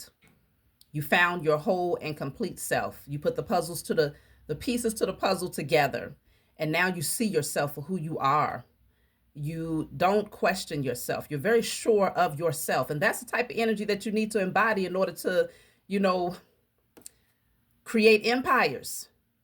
You found your whole and complete self. You put the pieces to the puzzle together. And now you see yourself for who you are. You don't question yourself. You're very sure of yourself. And that's the type of energy that you need to embody in order to, create empires,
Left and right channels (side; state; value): both; identical; correlation 1.00